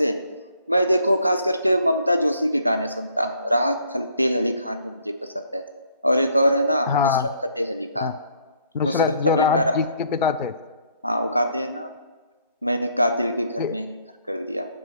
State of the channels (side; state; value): both; inverted; correlation -0.66